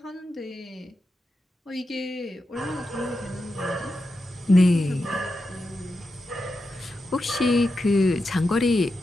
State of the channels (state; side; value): normal; both; correlation 0.89